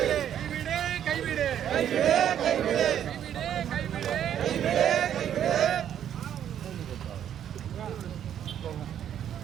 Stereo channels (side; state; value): left; quieter; 9.9 dB